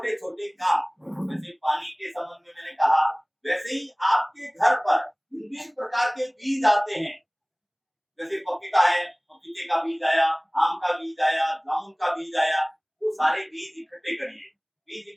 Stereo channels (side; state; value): both; identical; correlation 1.00